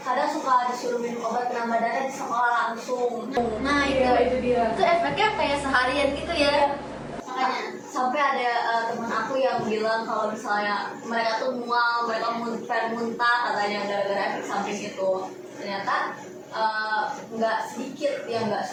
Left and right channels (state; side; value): identical; both; correlation 1.00